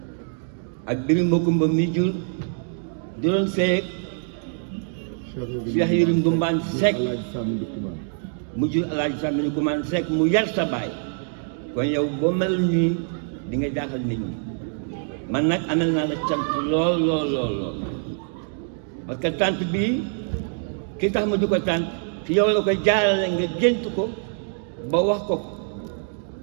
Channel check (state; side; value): silent; left; digital silence